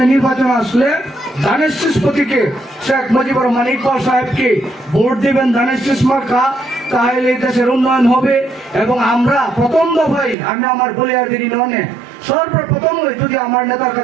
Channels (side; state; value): left; drops out; at 10.4 s